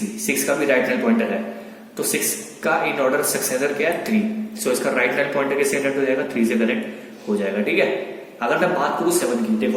6 का भी राइट नल पॉइंटर है तो 6 का इन ऑर्डर सक्सेसर क्या है? 3। सो इसका राइट नल पॉइंटर किससे कनेक्ट हो जाएगा? 3 से कनेक्ट हो जाएगा। ठीक है, अगर मैं बात करूं 7 की,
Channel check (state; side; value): identical; both; correlation 1.00